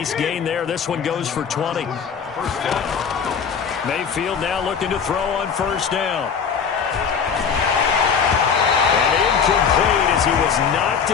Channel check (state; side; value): quieter; right; 6.6 dB